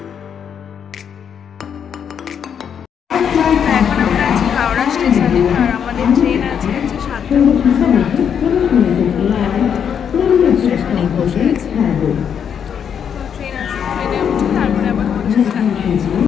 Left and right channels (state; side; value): quieter; right; 7.9 dB